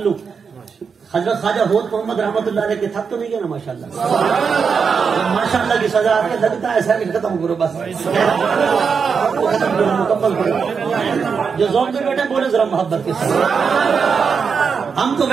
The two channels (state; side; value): quieter; left; 5.9 dB